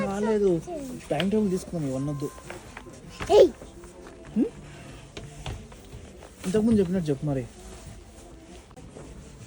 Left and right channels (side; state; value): both; identical; correlation 1.00